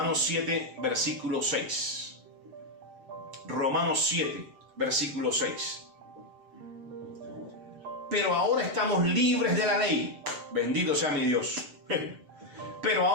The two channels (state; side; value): late; left; 7.8 ms